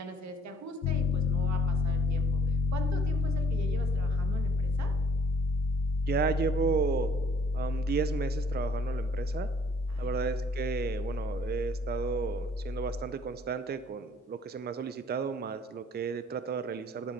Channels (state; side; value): normal; both; correlation 0.59